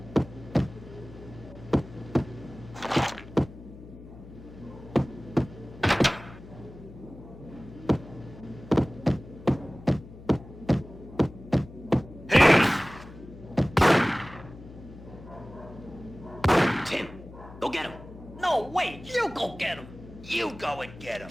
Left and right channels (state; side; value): noise; left; hum, 17 dB below the sound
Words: Tim, go get him. No, wait, you go get him. You go and get him.